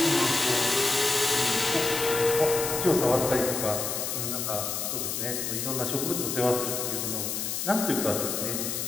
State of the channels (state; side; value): noise; left; hiss, 2 dB below the sound